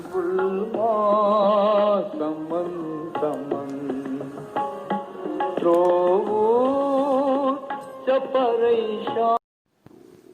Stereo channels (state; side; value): identical; both; correlation 1.00